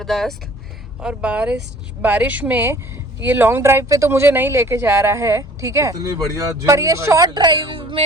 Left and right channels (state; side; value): normal; both; correlation 0.51